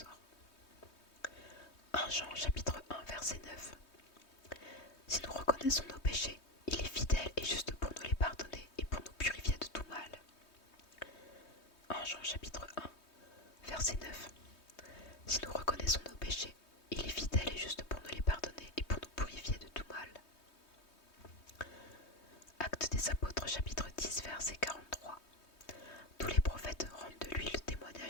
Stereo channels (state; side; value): late; right; 3.2 ms